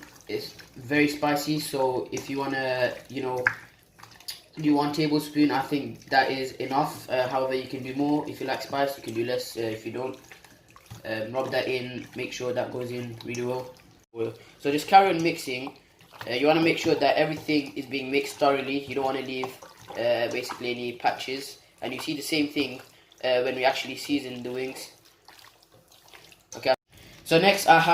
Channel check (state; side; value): identical; both; correlation 1.00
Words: It's very spicy, so if you wanna, do 1 tablespoon, I think that is enough. However, you can do more if you like spice. You can do less if you don't. Rub that in, make sure that goes in really well. So just carry on mixing. You want to make sure that everything is being mixed thoroughly. You don't want to leave basically any patches. And you see the same thing when we actually season the wings. Okay. So next I